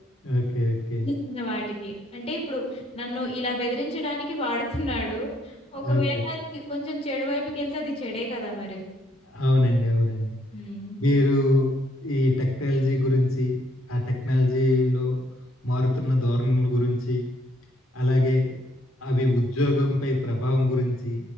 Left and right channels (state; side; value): normal; both; correlation 0.71